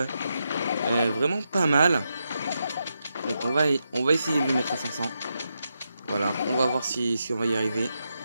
vraiment pas mal. Donc on va essayer de le mettre à 500. Voilà, on va voir si on va y arriver.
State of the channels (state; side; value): inverted; both; correlation -0.85